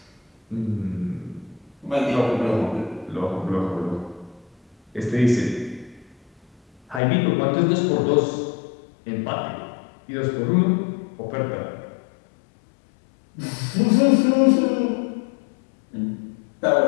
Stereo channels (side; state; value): right; drops out; at 7.0 s